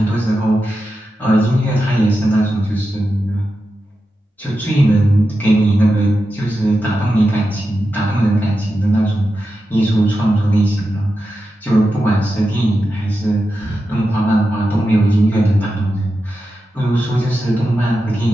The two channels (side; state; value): both; normal; correlation 0.90